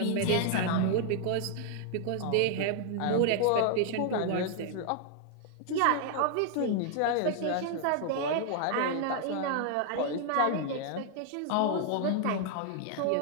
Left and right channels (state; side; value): different; both; correlation 0.00